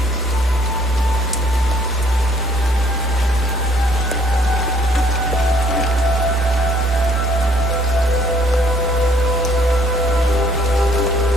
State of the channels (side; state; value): right; noise; hum, 17 dB below the sound